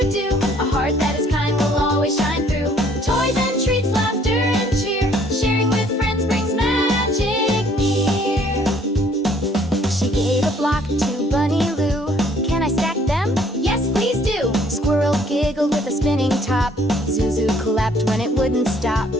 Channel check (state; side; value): normal; both; correlation 0.61